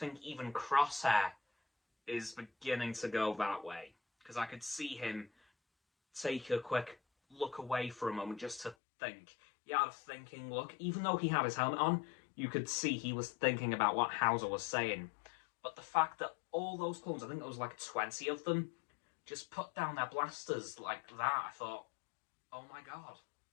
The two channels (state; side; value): drops out; right; at 8.8 s